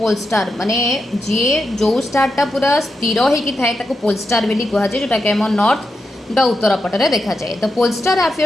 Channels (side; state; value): both; normal; correlation 0.87